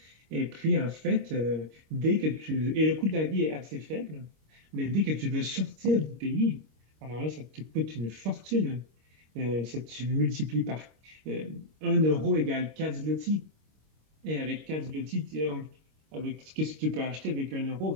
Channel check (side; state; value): left; late; 26 ms